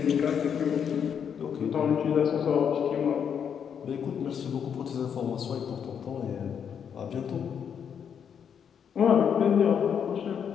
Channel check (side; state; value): right; quieter; 7.7 dB